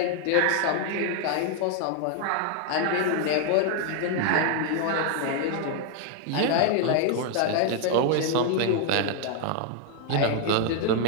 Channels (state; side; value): different; both; correlation 0.00